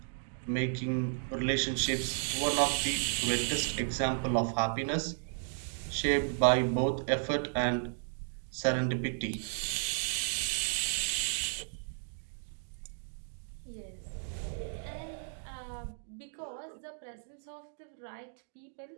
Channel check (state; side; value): silent; left; digital silence